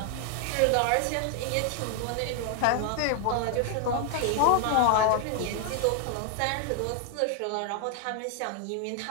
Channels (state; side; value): different; both; correlation 0.00